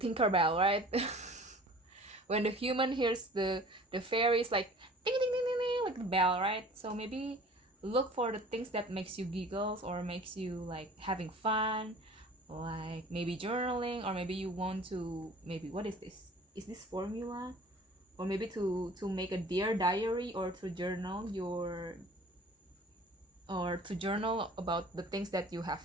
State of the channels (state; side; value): normal; both; correlation 0.46